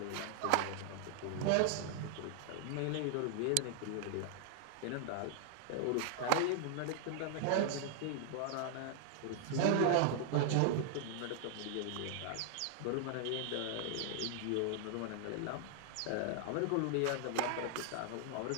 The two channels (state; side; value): different; both; correlation -0.01